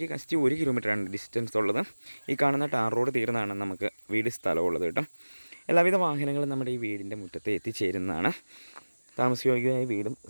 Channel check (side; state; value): both; inverted; correlation -1.00